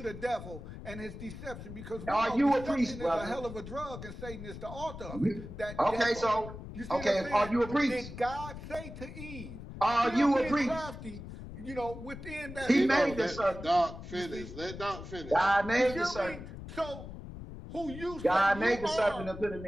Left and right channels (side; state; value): left; noise; rumble, 11 dB below the sound